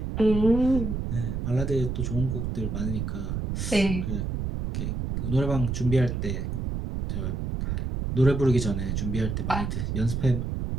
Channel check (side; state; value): right; noise; rumble, 2 dB below the sound